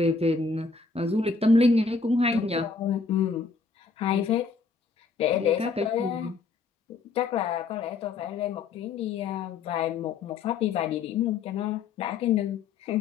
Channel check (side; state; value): right; quieter; 4.6 dB